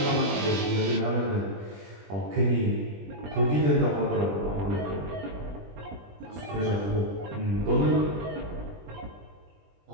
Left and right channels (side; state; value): left; late; 20 ms